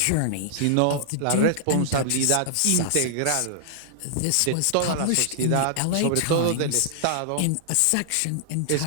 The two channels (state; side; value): different; both; correlation -0.01